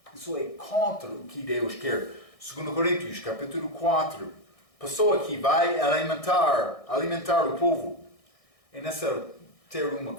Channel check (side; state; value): right; late; 1.6 ms